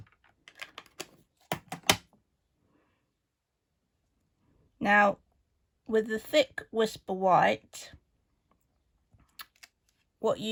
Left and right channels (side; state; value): both; identical; correlation 1.00